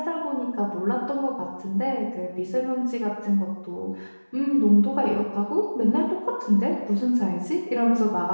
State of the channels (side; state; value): both; inverted; correlation -1.00